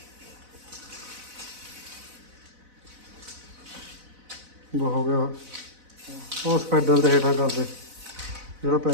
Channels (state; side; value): late; left; 4.0 ms